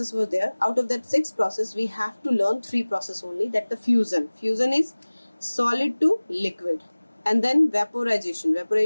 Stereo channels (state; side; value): inverted; both; correlation -1.00